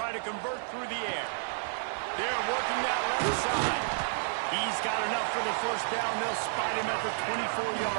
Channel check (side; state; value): left; silent; digital silence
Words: to convert through the air. They're working that left side. He's got enough for the first down. They'll spot him at the